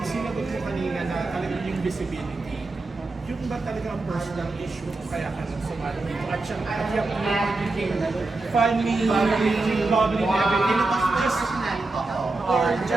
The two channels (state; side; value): quieter; left; 3.3 dB